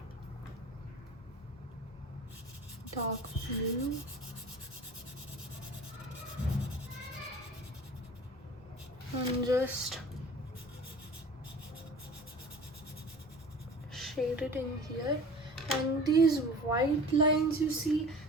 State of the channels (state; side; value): normal; both; correlation 0.42